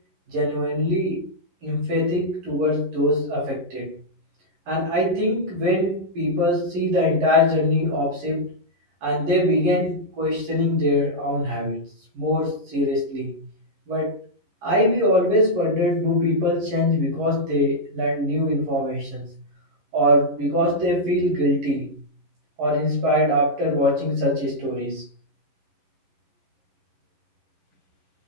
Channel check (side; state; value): left; late; 11 ms